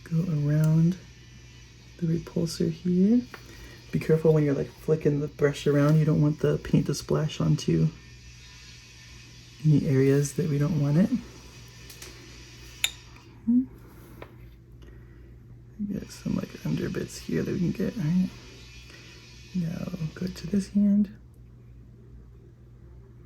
go around the repulsor here. Be careful when you're like flicking the brush around. You don't want the paint to splash onto any areas that we don't want it. Get some like under bits here that we can get. All right. Now go to this hand.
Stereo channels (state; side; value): identical; both; correlation 1.00